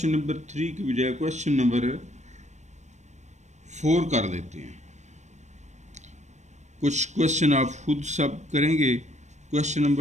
नंबर 3 की बजाय क्वेश्चन नंबर 4 कर लेते हैं। कुछ क्वेश्चन आप खुद सब करेंगे। क्वेश्चन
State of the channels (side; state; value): left; late; 0.34 ms